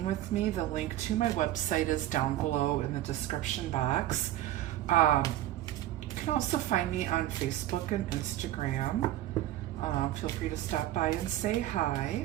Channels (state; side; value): quieter; left; 14.2 dB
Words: with me. The link to my website is down below in the description box. You can also find me on Facebook and Instagram. Feel free to stop by and say